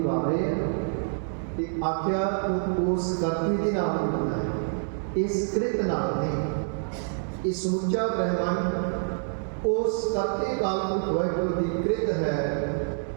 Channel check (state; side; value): silent; left; digital silence